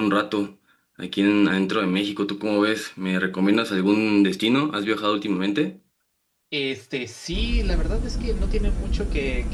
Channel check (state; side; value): identical; both; correlation 1.00